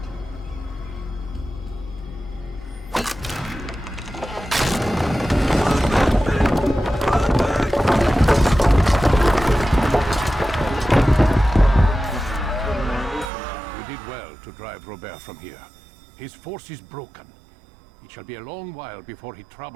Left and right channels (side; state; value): left; drops out; at 13.3 s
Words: Robert from here. His force is broken. It shall be a long while before he